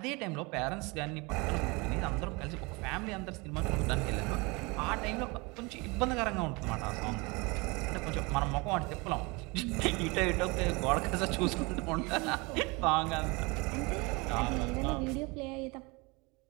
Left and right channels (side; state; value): left; quieter; 26.6 dB